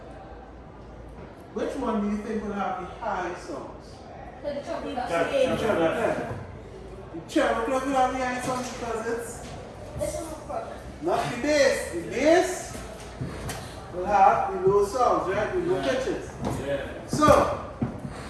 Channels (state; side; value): identical; both; correlation 1.00